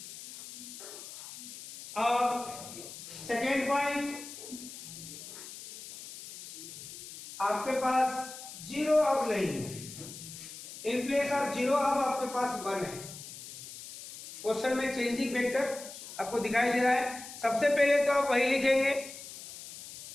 और सेकेंड पॉइंट, आपके पास 0 अब नहीं है, इन प्लेस ऑफ 0 अब आपके पास 1 है। क्वेश्चन में चेंजिंग वेक्टर आपको दिखाई दे रहा है। सबसे पहले तो आप वही लिखेंगे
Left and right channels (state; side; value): noise; left; hiss, 13 dB below the sound